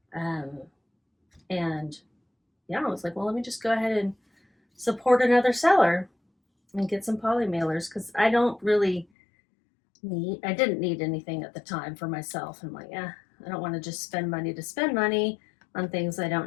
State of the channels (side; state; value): right; drops out; at 9.1 s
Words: And yeah, I was like, well, let me just go ahead and support another seller and get some poly mailers, because I didn't need anything at the time for myself. I'm like, I don't want to just spend money to spend money on things I